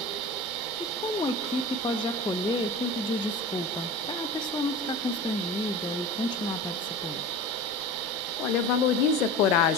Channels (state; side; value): noise; right; rumble, 29 dB below the sound